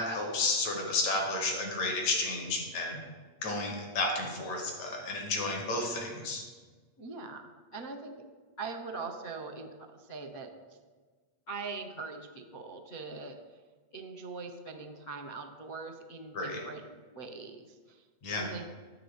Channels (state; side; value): late; right; 8.4 ms